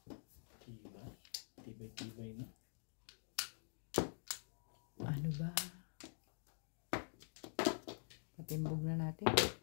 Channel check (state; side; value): silent; right; digital silence